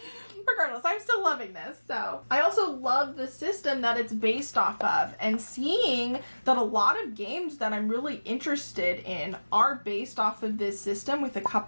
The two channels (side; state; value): both; inverted; correlation -1.00